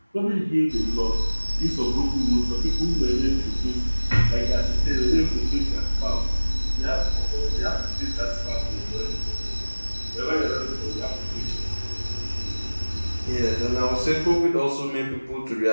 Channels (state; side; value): inverted; both; correlation -1.00